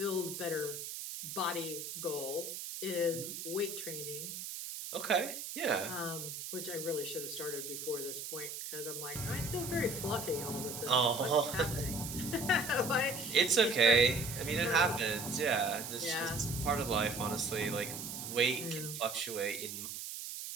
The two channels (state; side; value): noise; right; hiss, 7 dB below the sound